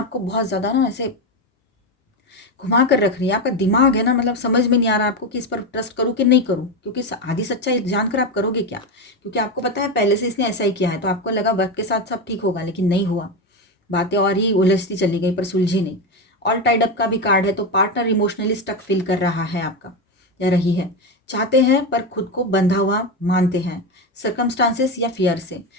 बहुत ज़्यादा ना ऐसे घुमा कर रख रही है। आपका दिमाग है ना, मतलब समझ में नहीं आ रहा आपको कि इस पर ट्रस्ट करूँ कि नहीं करूँ, क्योंकि आधी सच्चाई जानकर आप करोगे क्या, क्योंकि आपको पता है पहले से इसने ऐसा ही किया है, तो आपको लगा वक्त के साथ सब ठीक होगा, लेकिन नहीं हुआ, बातें और ही उलझती चली गई पर सुलझी नहीं। ऑल टाइड अप का भी कार्ड है, तो पार्टनर इमोशनली स्टक फील कर रहा है आपका या रही है, चाहते हैं पर खुद को बंधा हुआ मानते हैं, सर्कमस्टांसेस या फियर से,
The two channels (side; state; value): both; normal; correlation 0.14